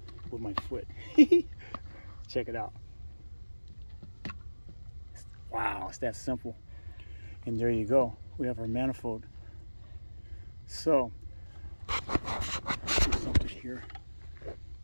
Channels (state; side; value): inverted; both; correlation -1.00